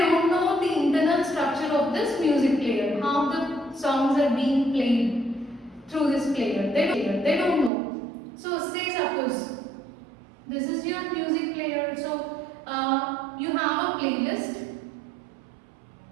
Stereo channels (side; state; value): left; drops out; at 7.7 s